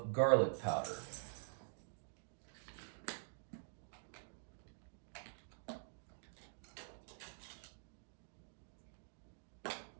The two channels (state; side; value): silent; left; digital silence